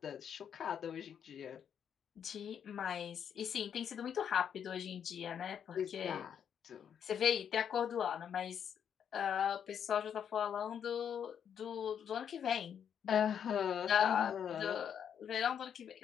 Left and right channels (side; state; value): right; quieter; 8.3 dB